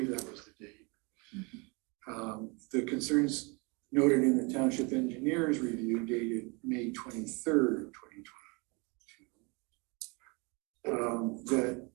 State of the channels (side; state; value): left; quieter; 30.2 dB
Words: that was the date. The concerns noted in the Township Engineer's review dated May 23rd, 2022.